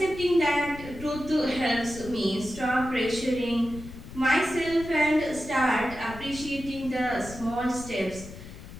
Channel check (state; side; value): noise; left; rumble, 14 dB below the sound